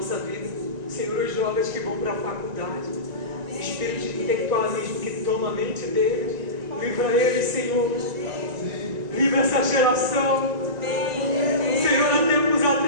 vida. Senhor, os jovens que vão para a faculdade, o espírito de intelectualismo que toma a mente deles, livra eles, Senhor. Livra essa geração. Senhor, há tempos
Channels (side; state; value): left; late; 1.9 ms